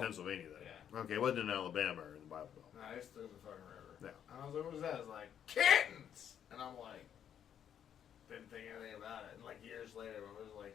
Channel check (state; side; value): quieter; right; 9.2 dB